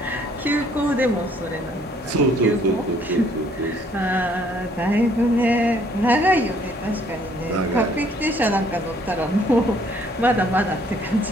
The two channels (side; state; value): both; normal; correlation 0.63